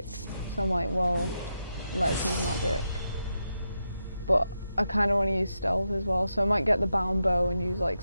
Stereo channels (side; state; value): both; inverted; correlation -0.86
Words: so I'm like, well, let's use magic. But I kind of want to use stealth as well, so I might get the bound bow and use like